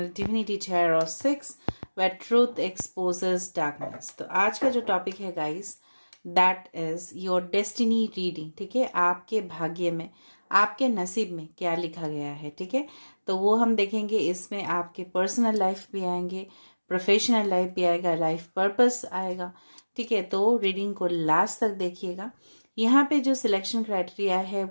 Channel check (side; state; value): both; inverted; correlation -1.00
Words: Divinity Tarot 6 where truth exposes darkness। तो आज का जो topic है guys, that is your destiny reading. ठीक है, आपके भाग्य में, आपके नसीब में क्या लिखा गया है। ठीक है, तो वो हम देखेंगे। इसमें आपके पर्सनल लाइफ भी आएंगे, प्रोफेशनल लाइफ भी आएगा, लाइफ पर्पस आएगा। ठीक है, तो रीडिंग को लास्ट तक देखिएगा। यहाँ पे जो सिलेक्शन क्राइटेरिया है